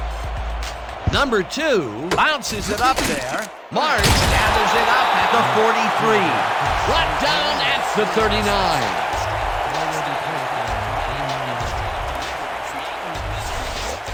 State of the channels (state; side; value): identical; both; correlation 1.00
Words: Number 2 bounces it up there. March gathers it up at the 43. Brought down at the 39.